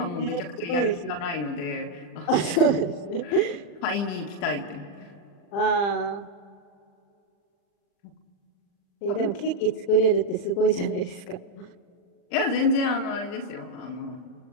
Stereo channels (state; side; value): late; right; 40 ms